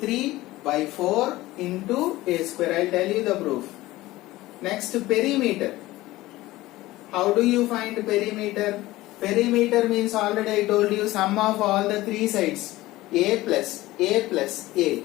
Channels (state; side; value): quieter; right; 17.8 dB